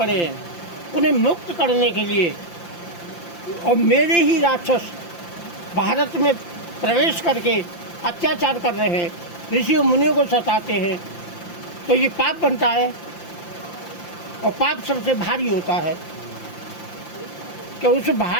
हैं, उन्हें मुक्त करने के लिए, और मेरे ही राक्षस भारत में प्रवेश करके अत्याचार कर रहे हैं, ऋषियों मुनियों को सताते हैं, तो ये पाप बनता है। और पाप सबसे भारी होता है कि उस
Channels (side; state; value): right; late; 5.8 ms